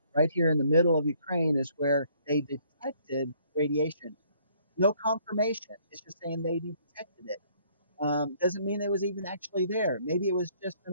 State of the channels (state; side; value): inverted; both; correlation -0.63